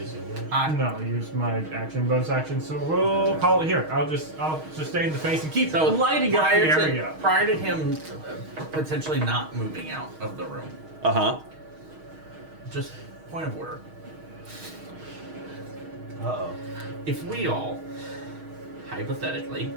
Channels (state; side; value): late; left; 6.4 ms